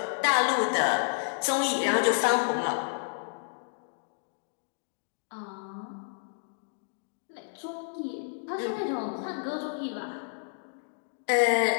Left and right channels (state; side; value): silent; right; digital silence